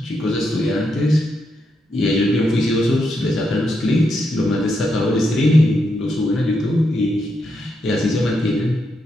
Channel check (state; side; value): normal; both; correlation 0.82